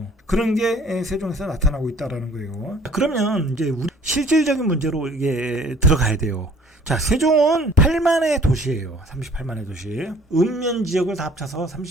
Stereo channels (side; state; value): both; normal; correlation 0.55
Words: 그런 게 세종에서 나타나고 있다라는 거예요. 그러면 이제 우리 실질적인 문제로 이게 들어가야 돼요. 자, 세종은 8만의 도시예요. 38만의 도시. 읍면 지역을 다 합쳐서